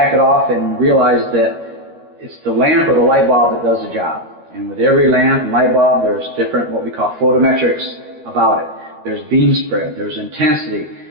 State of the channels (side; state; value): left; late; 13 ms